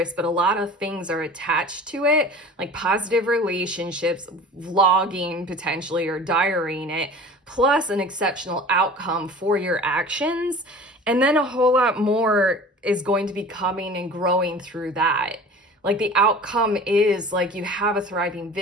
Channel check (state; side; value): normal; both; correlation 0.41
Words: but a lot of things are attached to it, like positive relationships, vlogging potentially, or diarying it, plus an exceptional outcome for your actions. And then a whole lot more is going to be coming and growing through that. Like the outcome is like you have a thriving